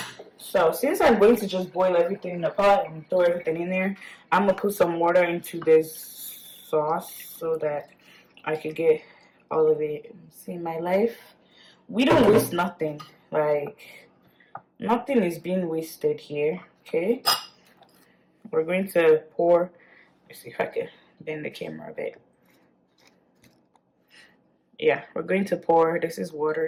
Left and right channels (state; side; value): identical; both; correlation 1.00